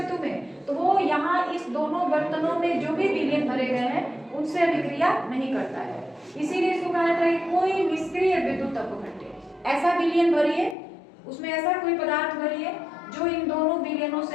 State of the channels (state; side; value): drops out; right; at 10.8 s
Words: में, तो वो यहाँ इस दोनों बर्तनों में जो भी विलयन भरे गए हैं उनसे अभिक्रिया नहीं करता है, इसीलिए इसको कहा जाता है कोई निष्क्रिय विद्युत अपघट्य। ऐसा विलयन भरिए, उसमें ऐसा कोई पदार्थ भरिए जो इन दोनों विलयनों